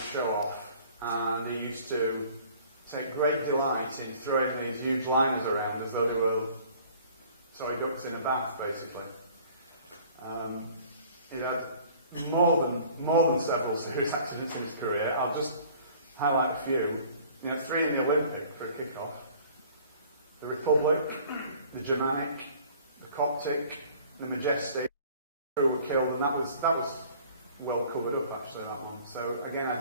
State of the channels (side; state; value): both; inverted; correlation -0.51